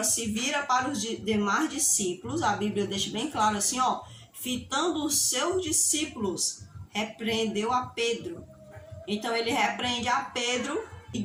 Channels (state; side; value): identical; both; correlation 1.00